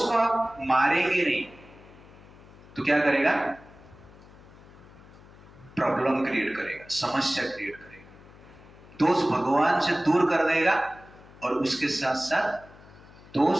को आप मारेंगे नहीं तो क्या करेगा? प्रॉब्लम क्रिएट करेगा, समस्या क्रिएट करेगा। दोष भगवान से दूर कर देगा और उसके साथ साथ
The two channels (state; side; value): noise; left; hum, 22 dB below the sound